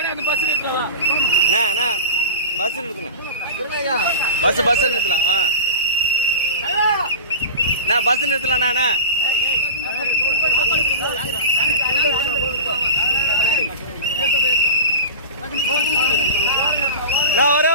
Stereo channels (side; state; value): both; inverted; correlation -0.30